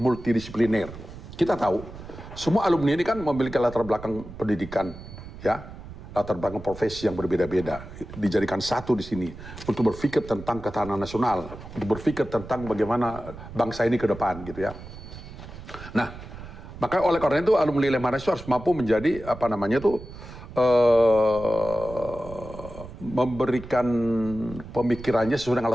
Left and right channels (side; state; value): right; noise; rumble, 14 dB below the sound